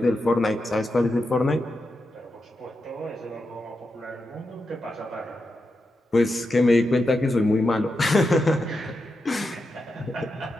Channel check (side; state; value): both; normal; correlation 0.87